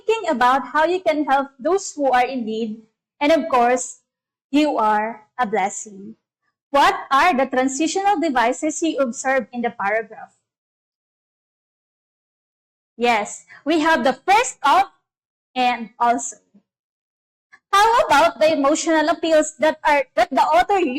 about how you can help those who are in need, and of course, you are a blessing. What are the transitional devices you observe in the paragraph? Yes, we have the first of and also. How about the emotional appeals that the author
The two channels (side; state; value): both; identical; correlation 1.00